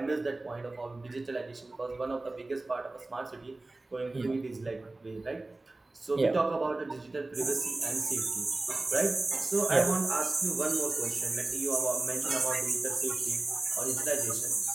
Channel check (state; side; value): quieter; left; 3.0 dB